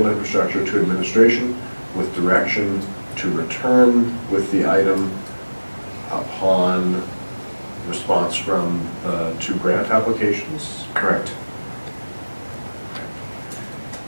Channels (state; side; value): inverted; both; correlation -1.00